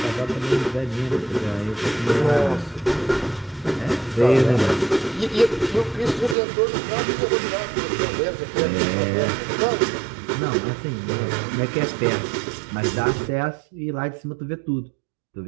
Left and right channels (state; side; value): drops out; left; at 6.4 s